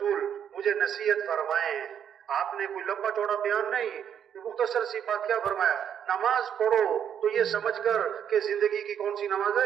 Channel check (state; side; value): quieter; left; 8.8 dB